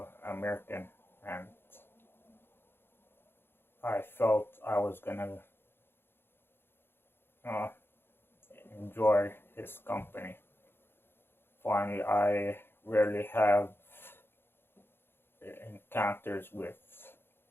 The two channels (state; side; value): late; right; 0.11 ms